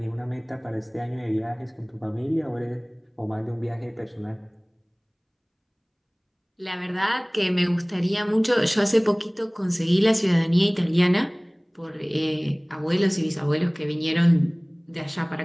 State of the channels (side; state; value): both; identical; correlation 1.00